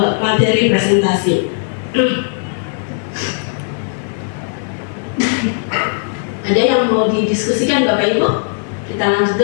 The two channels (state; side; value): silent; right; digital silence